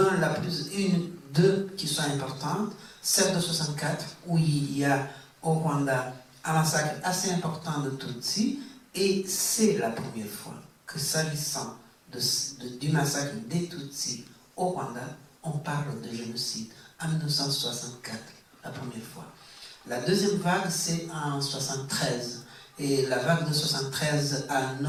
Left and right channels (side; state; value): both; identical; correlation 1.00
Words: deux qui sont importantes. Celle de 64, où il y a au Rwanda un massacre assez important de Tutsis, et c'est la première fois que, s'agissant du massacre des Tutsis au Rwanda, on parle de génocide en 1964, la première fois. La deuxième vague, c'est en 1973, et la vague de 1973 a